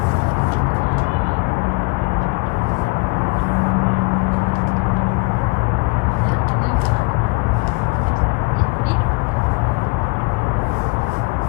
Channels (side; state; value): right; quieter; 29.1 dB